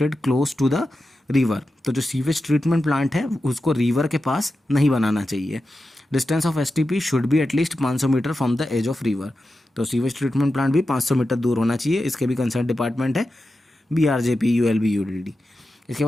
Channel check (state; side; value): normal; both; correlation 0.91